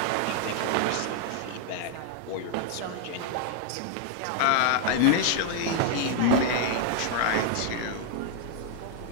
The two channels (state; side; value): different; both; correlation 0.00